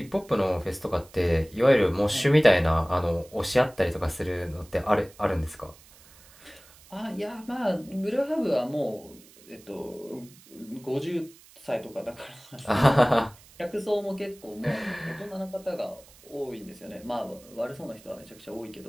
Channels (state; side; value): noise; right; hiss, 24 dB below the sound